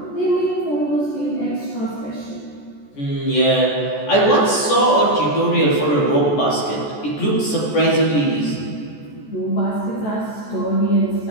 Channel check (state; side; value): late; right; 14 ms